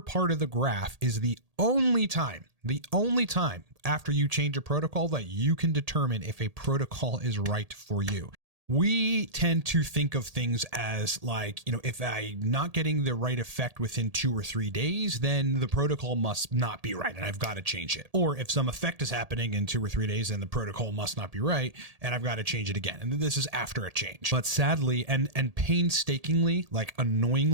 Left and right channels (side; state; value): left; late; 1.8 ms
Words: of the graph is the only time after you change a protocol that you can determine if a protocol is right for you. We tend to think of things as like, if I'm not getting the right effect within 2 or 3 days, then the protocol must not be right and I've got to change it. Or if some effect is happening in 2 or 3 days, then the protocol must not be right and I've got to change it again. And this is after a change. But sadly and painstakingly, like